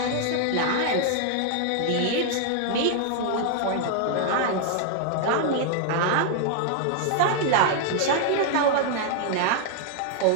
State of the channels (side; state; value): both; different; correlation 0.00